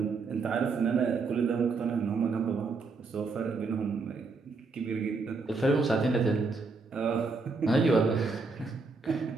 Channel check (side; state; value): left; quieter; 4.2 dB